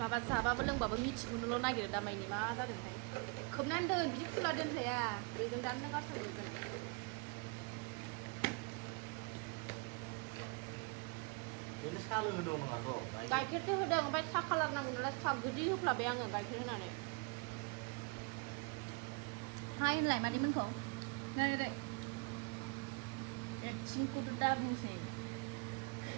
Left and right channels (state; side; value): quieter; left; 30.6 dB